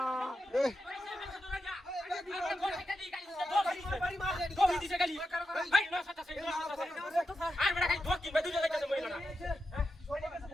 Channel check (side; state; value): both; normal; correlation 0.88